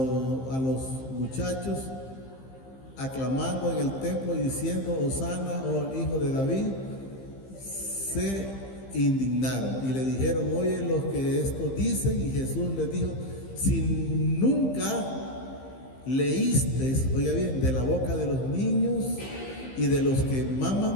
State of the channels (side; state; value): right; late; 15 ms